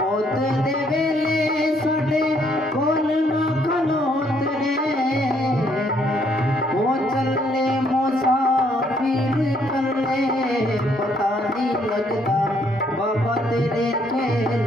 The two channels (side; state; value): both; normal; correlation 0.68